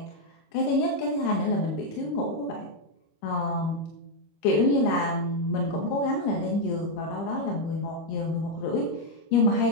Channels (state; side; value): late; right; 25 ms